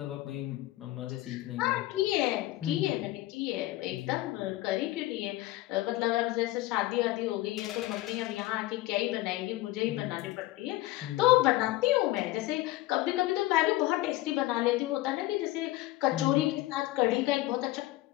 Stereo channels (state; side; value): quieter; right; 17.7 dB